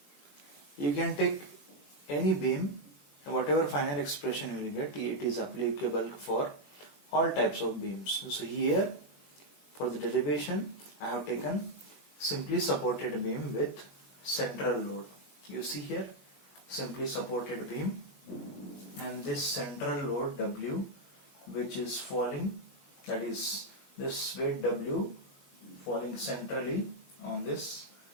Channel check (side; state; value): right; late; 21 ms